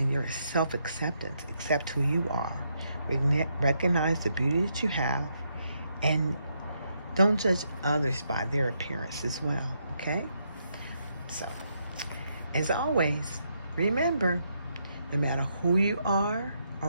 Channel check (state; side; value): inverted; both; correlation -0.78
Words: your self-acceptance. Accept who you are. Recognize the beauty that you have, and don't judge others by their appearance as well, okay? So, as always, remember, no matter who you are